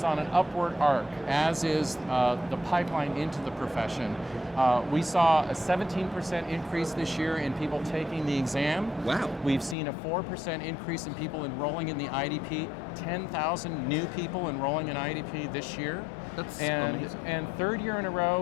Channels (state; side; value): drops out; right; at 9.8 s